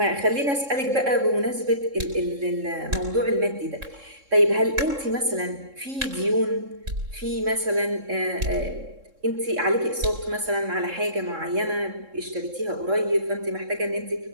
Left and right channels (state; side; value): late; left; 3.7 ms